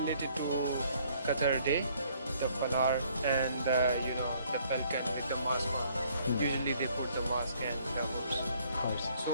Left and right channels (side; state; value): both; inverted; correlation -0.63